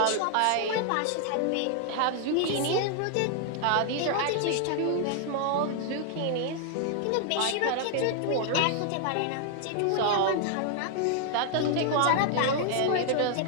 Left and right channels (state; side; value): different; both; correlation 0.00